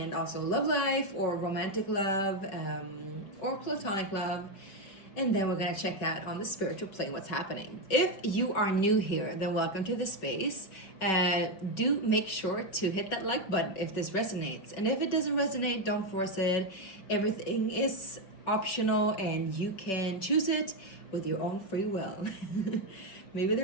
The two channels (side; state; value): right; late; 5.3 ms